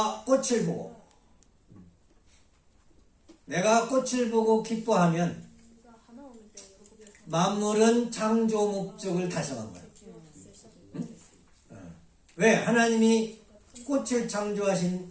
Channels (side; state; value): both; identical; correlation 1.00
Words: 꽃을 보고 기뻐하면 만물은 창조 목적을 달성한 거야. 응? 왜? 하나님이 꽃을 창조하신